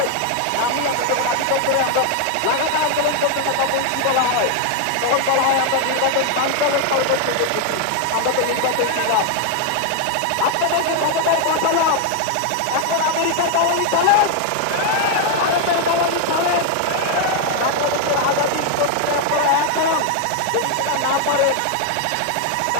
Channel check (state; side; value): different; both; correlation 0.00